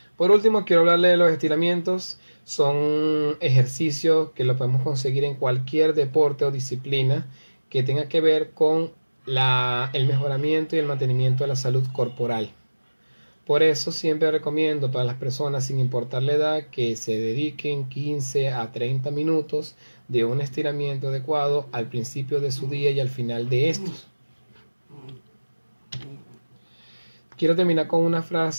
Por último, quiero hablarle de los estiramientos. Son ejercicios que lo podemos conseguir en cualquier deporte o disciplina que tenga que ver con el mejoramiento y el mantenimiento de la salud corporal. Por eso siempre recomiendo para las personas, sin importar la edad, que se dediquen 15 a 30 minutos de un estiramiento adecuado al principio de su día y al final de estos. Quiero terminar con una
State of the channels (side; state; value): both; inverted; correlation -1.00